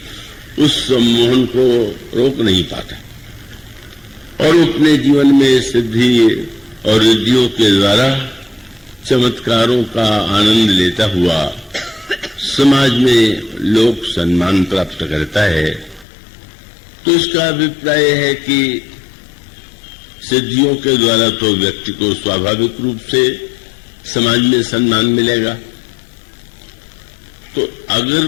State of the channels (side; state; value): right; drops out; at 16.1 s